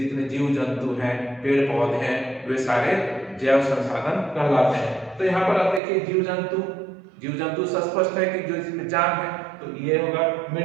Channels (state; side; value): drops out; left; at 5.8 s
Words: जीव जंतु हैं, पेड़ पौधे हैं, वे सारे जैव संसाधन कहलाते हैं। तो यहाँ पर आप देखिए जीव जंतु स्पष्ट है कि जो जिसमें जान है, तो ये होगा।